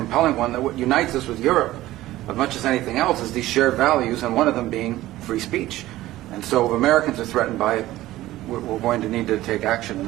one, that what unites us with Europe, as much as anything else, is these shared values, and one of them being free speech. And so if Americans are threatened by it, we're going to need to take action in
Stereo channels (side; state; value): left; quieter; 15.9 dB